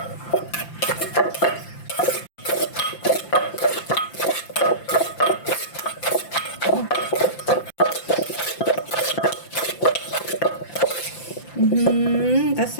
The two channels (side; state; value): right; late; 5.8 ms